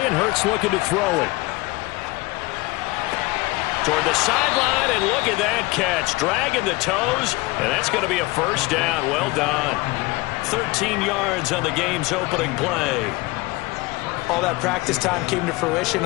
and Hurts looking to throw it. Toward the sideline, and look at that catch. Dragging the toes, and that's going to be a first down. Well done. 13 yards on the game's opening play. All that practice time came to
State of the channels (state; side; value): quieter; right; 22.4 dB